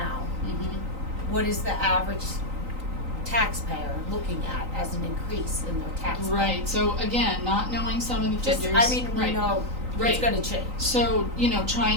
what is the average taxpayer looking at as an increase in their tax bill? Right. So again, not knowing some of the figures. We know Right. it's gonna change. So, you know,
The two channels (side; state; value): left; late; 3.9 ms